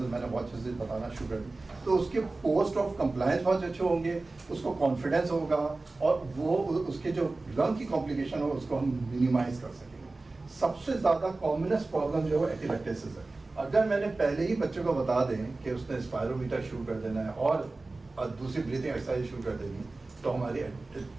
मैंने बहुत अच्छे से बताना शुरू कर दी, तो उसके पोस्ट ऑफ कंप्लायंस बहुत अच्छे होंगे, उसको कॉन्फिडेंस होगा, और वो उसके जो लंग की कॉम्प्लिकेशन हो उसको हम मिनिमाइज कर सकेंगे। सबसे ज़्यादा कॉमनेस्ट प्रॉब्लम जो है एपिलेक्टेसिस है। अगर मैंने पहले ही बच्चे को बता दें कि उसने स्पायरोमीटर शुरू कर देना है और दूसरी ब्रीथिंग एक्सरसाइज शुरू कर देनी, तो हमारी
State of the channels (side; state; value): left; quieter; 3.3 dB